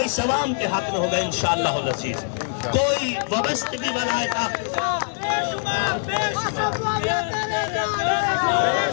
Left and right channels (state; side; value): silent; right; 63 dB below the other